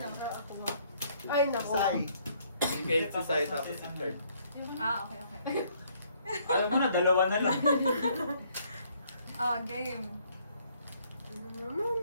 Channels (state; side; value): inverted; both; correlation -0.65